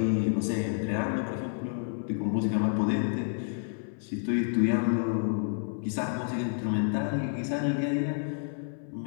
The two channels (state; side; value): silent; right; 58 dB below the other